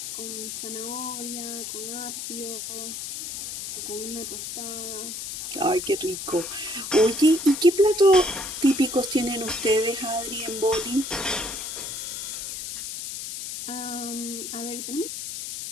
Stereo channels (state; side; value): noise; left; hiss, 6 dB below the sound